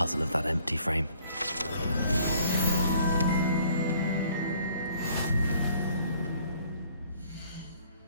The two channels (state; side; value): inverted; both; correlation -0.59